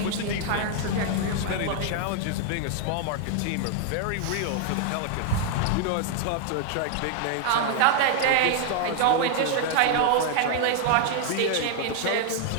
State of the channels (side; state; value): both; different; correlation 0.00